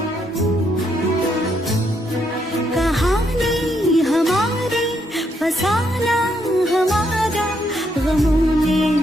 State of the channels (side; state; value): both; normal; correlation 0.75